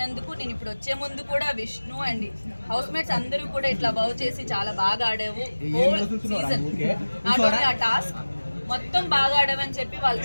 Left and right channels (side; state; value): both; inverted; correlation -1.00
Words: నేను ఇప్పుడు వచ్చే ముందు కూడా విష్ణు అండ్ హౌస్ మేట్స్ అందరూ కూడా ఇట్లా బౌ చేసి చాలా బాగా ఆడావు హోల్ సీజన్, నాట్ ఓన్లీ ఆ టాస్క్ మొత్తం బాగా ఆడవని చెప్పి వాళ్ళు